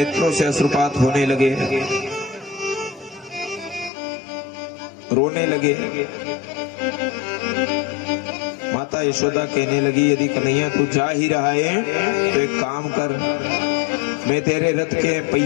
से अश्रुपात होने लगे, रोने लगे। माता यशोदा कहने लगी यदि कन्हैया तू जा ही रहा है तो एक काम कर, मैं तेरे रथ के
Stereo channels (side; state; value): right; drops out; at 3.9 s